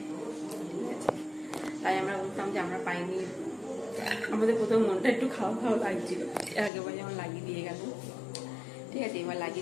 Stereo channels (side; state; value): right; drops out; at 6.7 s